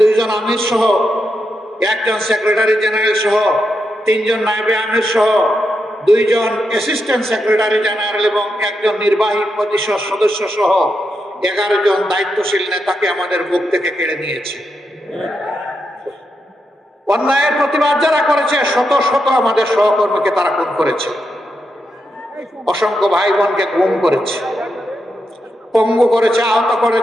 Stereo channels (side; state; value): both; normal; correlation 0.85